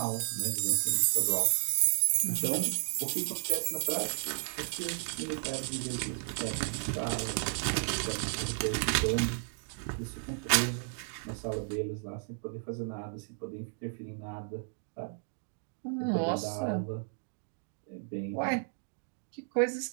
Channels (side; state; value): left; silent; digital silence